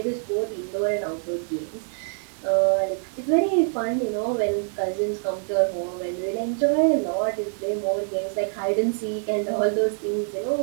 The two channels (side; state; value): left; silent; 61 dB below the other